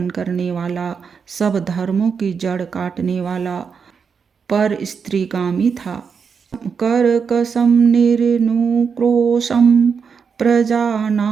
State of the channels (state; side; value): quieter; left; 6.1 dB